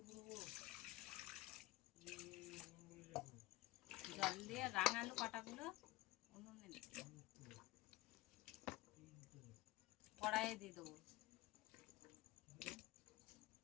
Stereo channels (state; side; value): quieter; right; 18.5 dB